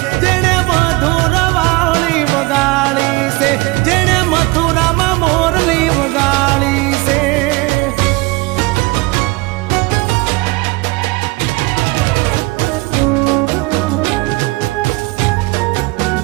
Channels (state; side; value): quieter; left; 23.6 dB